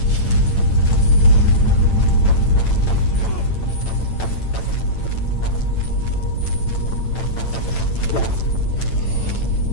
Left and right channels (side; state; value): right; late; 8.9 ms